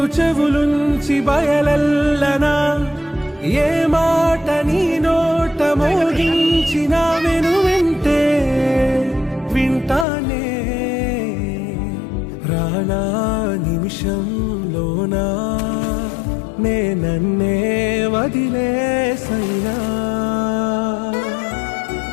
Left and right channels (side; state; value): right; drops out; at 10.1 s